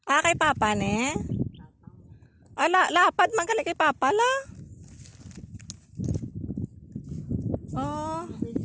Kay papa ne. Papa mo. Lapad man gali kay papa la. Oh.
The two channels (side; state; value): both; identical; correlation 1.00